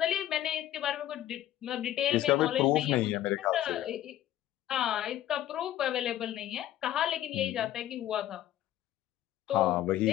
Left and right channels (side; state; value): right; quieter; 13.0 dB